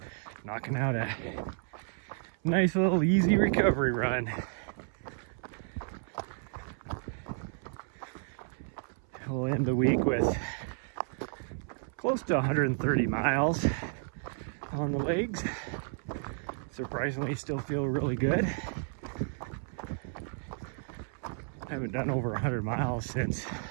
knocking out a nice little easy recovery run. We'll end the week with close to 130 miles on the legs. Surprisingly, still feel really good. I haven't done over 100 miles since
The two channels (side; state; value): left; silent; 56 dB below the other